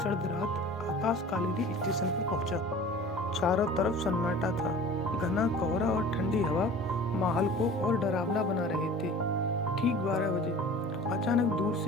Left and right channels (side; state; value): both; normal; correlation 0.42